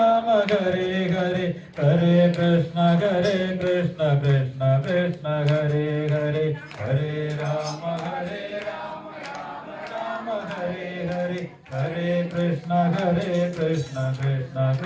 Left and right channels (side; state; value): both; identical; correlation 1.00